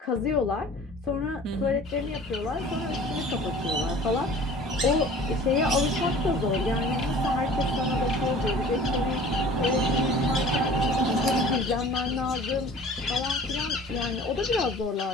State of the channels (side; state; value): both; normal; correlation 0.45